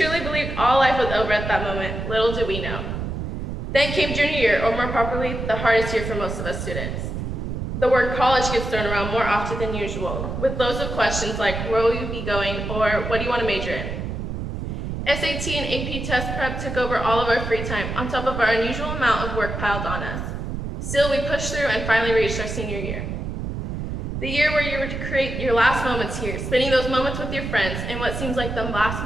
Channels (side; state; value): right; noise; rumble, 4 dB below the sound